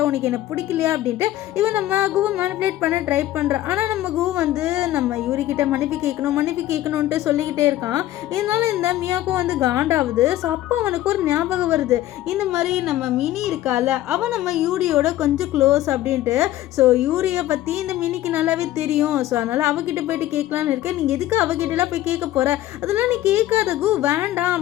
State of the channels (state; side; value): quieter; right; 14.3 dB